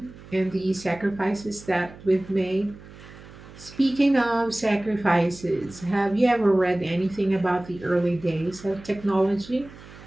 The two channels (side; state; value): right; noise; hum, 19 dB below the sound